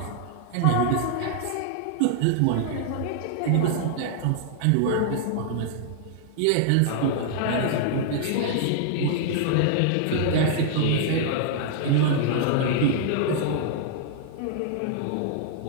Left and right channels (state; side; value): different; both; correlation -0.01